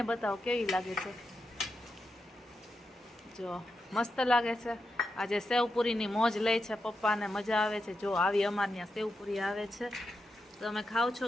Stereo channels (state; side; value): normal; both; correlation 0.87